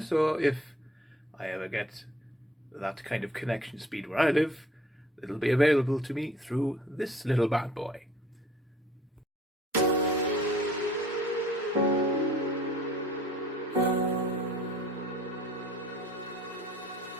if I ever get that kind of connection speed where I live, it'll be available to me through this little bad boy.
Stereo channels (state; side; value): normal; both; correlation 0.53